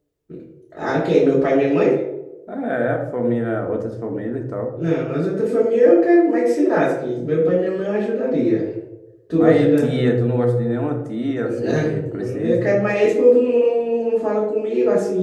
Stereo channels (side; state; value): both; identical; correlation 1.00